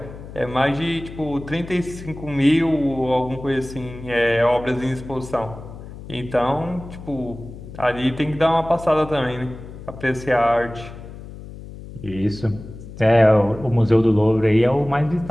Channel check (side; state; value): left; noise; hum, 14 dB below the sound